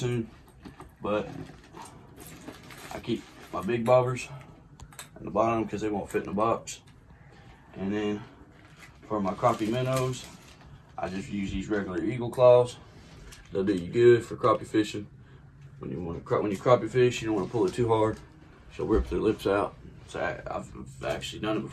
But I keep my big bobbers in the bottom because they won't fit in the box. And then for my crappie minnows, I just use these regular eagle claws. They'll do you good for crappie fishing. When you crappie fish, you don't want to pull it too hard. She'll rip their lips out. So I've actually done it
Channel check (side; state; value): both; identical; correlation 1.00